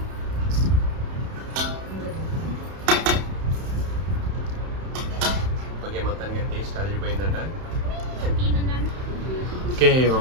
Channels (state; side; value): late; left; 31 ms